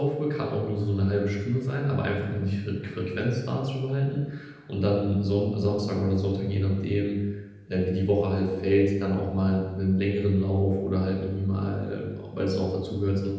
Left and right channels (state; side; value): identical; both; correlation 1.00